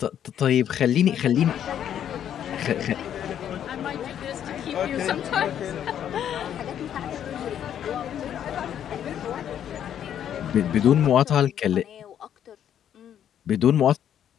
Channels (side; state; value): right; quieter; 9.8 dB